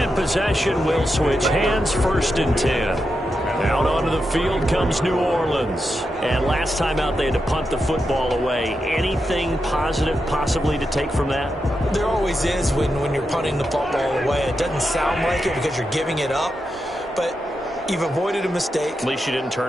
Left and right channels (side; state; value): both; normal; correlation 0.87